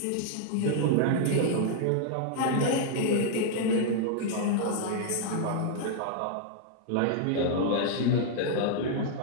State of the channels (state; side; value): different; both; correlation -0.01